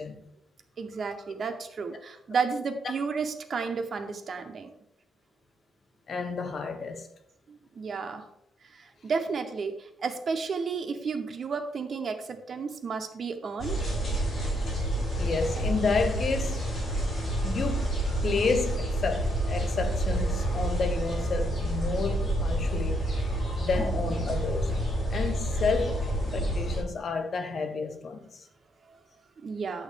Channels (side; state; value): both; normal; correlation 0.74